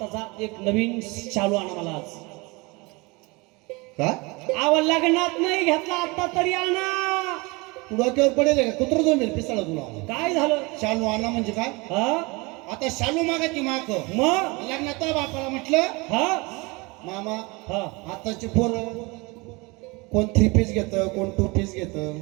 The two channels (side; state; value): left; quieter; 26.0 dB